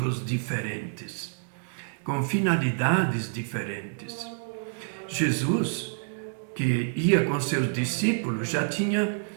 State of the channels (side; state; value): left; silent; digital silence